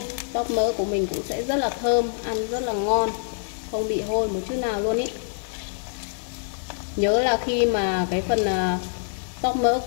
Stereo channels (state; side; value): silent; right; digital silence